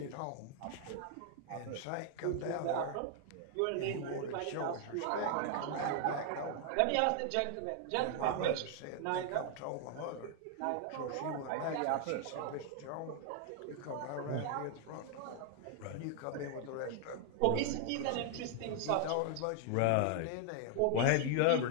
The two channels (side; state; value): both; different; correlation 0.00